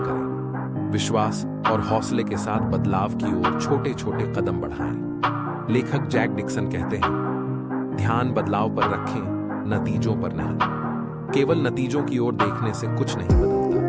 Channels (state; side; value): identical; both; correlation 1.00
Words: विश्वास और हौसले के साथ बदलाव की ओर छोटे छोटे कदम बढ़ाएं। लेखक जैक डिक्सन कहते हैं, ध्यान बदलाव पर रखें, नतीजों पर नहीं। केवल नतीजों की ओर देखने से कुछ नहीं